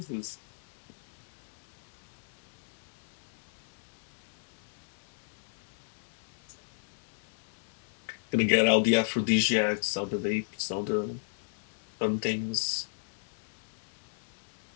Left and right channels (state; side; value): silent; right; digital silence